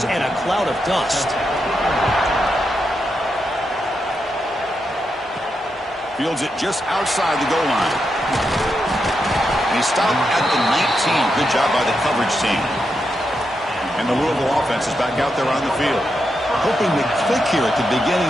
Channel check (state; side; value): normal; both; correlation 0.85